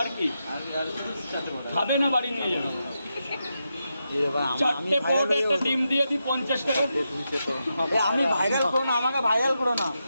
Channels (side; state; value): both; inverted; correlation -0.86